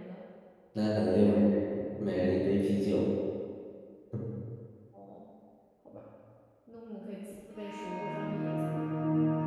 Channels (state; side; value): identical; both; correlation 1.00